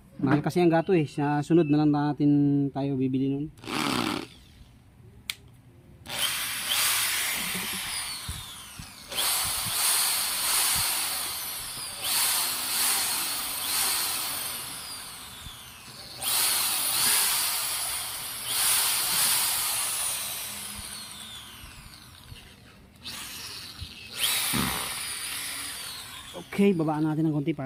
Mahal kasi ang gato eh. Sa sunod na lang natin tayo bibili nun. Okay, babaan natin ng konti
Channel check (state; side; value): identical; both; correlation 1.00